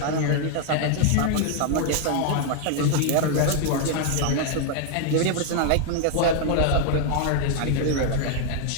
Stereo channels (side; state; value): both; different; correlation 0.00